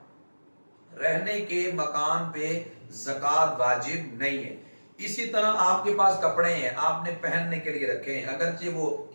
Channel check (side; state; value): both; inverted; correlation -1.00